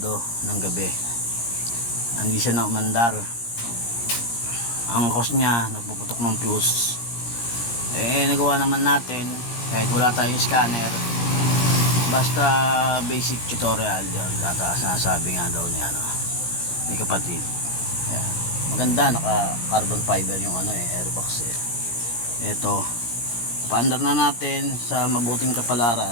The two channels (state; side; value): late; right; 17 ms